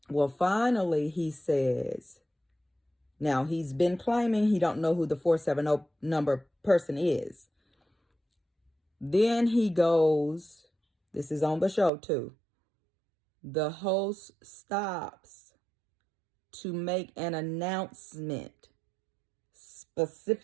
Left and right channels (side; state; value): left; drops out; at 11.9 s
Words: Well, finally, he says, now he's been claiming he don't know who the 470 number person is. Then he goes, this is on the show too. The host stops to make an announcement